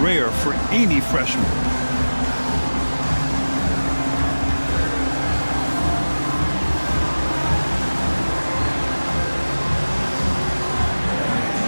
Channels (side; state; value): both; inverted; correlation -1.00